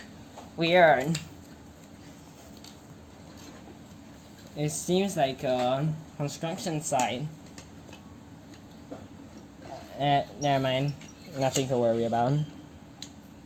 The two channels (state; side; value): identical; both; correlation 1.00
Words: Weird. It seems like a construction site. Never mind. Nothing to worry about.